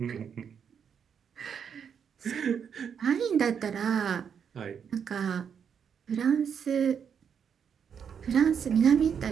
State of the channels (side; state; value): left; quieter; 7.4 dB